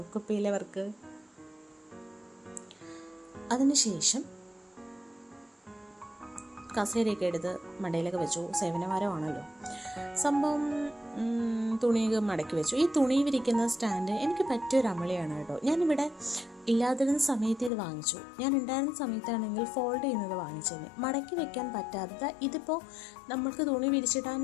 കുപ്പിയിലെ വർക്ക്. അതിനുശേഷം കസേരയൊക്കെ എടുത്ത് മടയിലൊക്കെ വെച്ചു. സേവനവാരമാണല്ലോ സംഭവം. തുണിയൊക്കെ മടക്കി വെച്ചു. ഈ തുണി വിരിക്കുന്ന സ്റ്റാൻഡ് എനിക്ക് പറ്റിയൊരു അമളിയാണ് കേട്ടോ. ഞാനിവിടെ ഇല്ലാതിരുന്ന സമയത്ത് ഇത് വാങ്ങിച്ചു. ഞാൻ ഉണ്ടായിരുന്ന സമയത്താണെങ്കിൽ ഫോൾഡ് ചെയ്യുന്നത് വാങ്ങിച്ചതിന്. മടക്കി വെക്കാൻ പറ്റാത്ത, ഇതിപ്പോൾ നമ്മൾക്ക് തുണി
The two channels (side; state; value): right; drops out; at 17.7 s